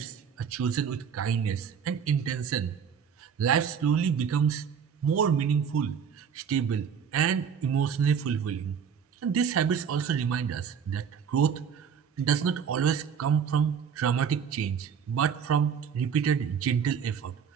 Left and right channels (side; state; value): left; quieter; 7.3 dB